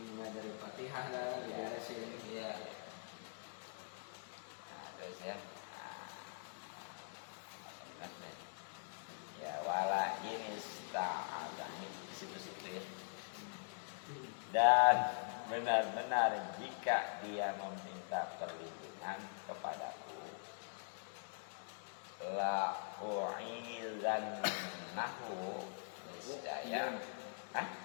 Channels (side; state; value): right; silent; digital silence